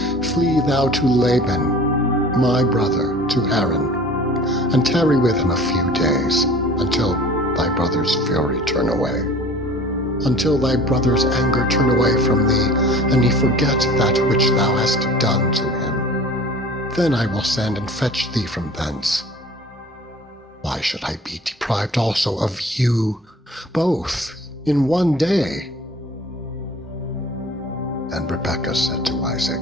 Flee thou to Laban, my brother, to Haran, and tarry with him a few days, until thy brother's fury turn away, until thy brother's anger turn away from thee, and he forget that which thou hast done to him. Then I will send and fetch thee from thence. Why should I be deprived also of you, both, in one day? And Rebekah said to Isaac,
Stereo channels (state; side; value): normal; both; correlation 0.45